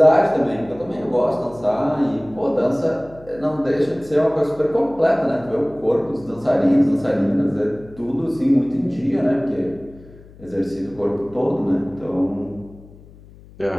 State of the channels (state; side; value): noise; left; hum, 22 dB below the sound